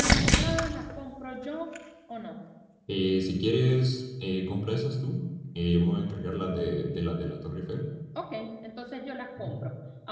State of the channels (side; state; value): both; identical; correlation 1.00